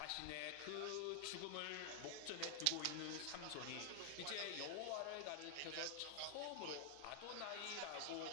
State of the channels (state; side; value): different; both; correlation 0.00